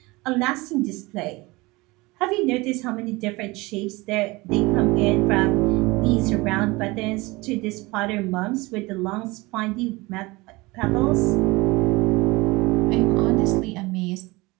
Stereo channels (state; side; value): quieter; left; 22.9 dB